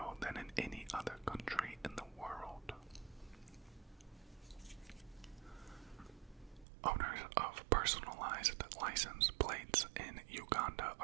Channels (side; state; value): left; drops out; at 6.7 s